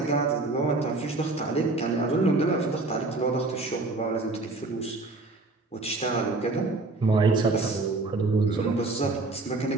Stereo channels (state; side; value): quieter; left; 3.3 dB